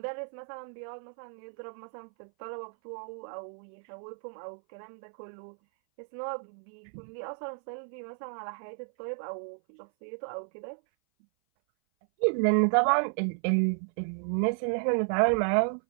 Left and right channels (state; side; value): silent; left; 56 dB below the other